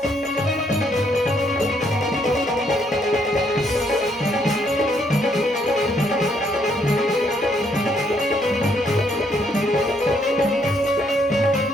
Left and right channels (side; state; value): both; normal; correlation 0.71